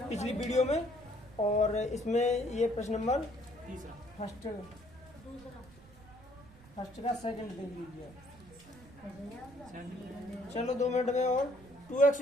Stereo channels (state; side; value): noise; right; rumble, 22 dB below the sound